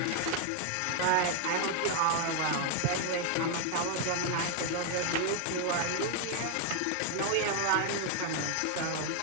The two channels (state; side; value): different; both; correlation 0.00